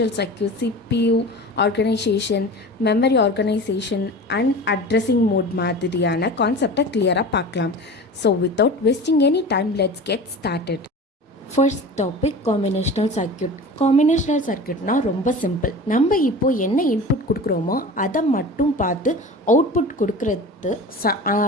circuit, CPU organisation, memory organisation and addressing mode மாதிரியான கான்செப்டை கிளியராக பார்க்கலாம். So without wasting any time let's get started. First topic combinational circuit. Combinational சர்க்யூட்னால் ரொம்ப சிம்பிள். நம்ம இப்போது என்ன இன்புட் கொடுக்குறோமோ அதை மட்டும் பார்த்து அவுட்புட்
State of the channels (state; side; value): normal; both; correlation 0.35